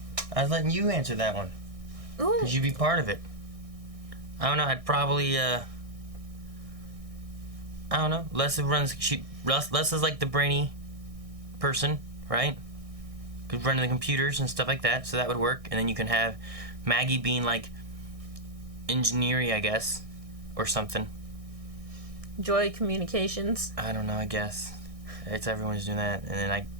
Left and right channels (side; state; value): left; late; 1.6 ms